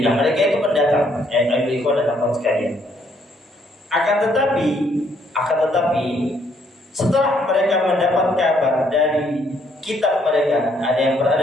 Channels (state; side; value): normal; both; correlation 0.69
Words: Mereka itu pendatang, ikhwan dan akhwat sekalian. Akan tetapi setelah mereka mendapat kabar dari kitab mereka, ada yang